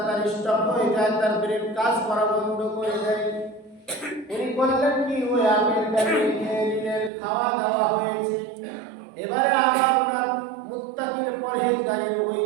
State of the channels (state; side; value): drops out; left; at 7.1 s